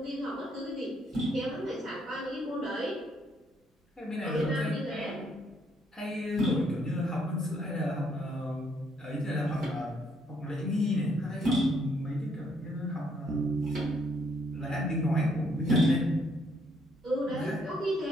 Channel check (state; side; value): normal; both; correlation 0.70